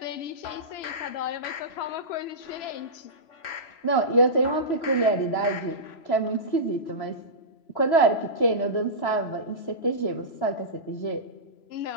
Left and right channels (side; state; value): right; late; 3.0 ms